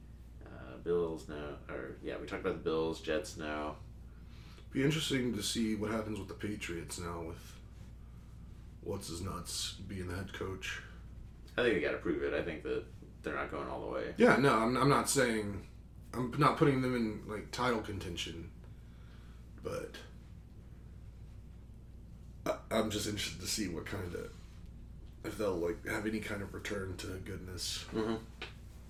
Bills, no. We talked about the Bills, Jets, no. Be interesting to see what happens with the Patriots now with what's-his-nuts being the head coach. I think they got to prove it. I think that they're not going all the way. Yeah, no, I'm not saying... I'm not putting them in, like, title contention, but I'm just interested to see what kind of... if they'll, like, have any kind of return to goodness. Mm-hmm.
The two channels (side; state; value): both; identical; correlation 1.00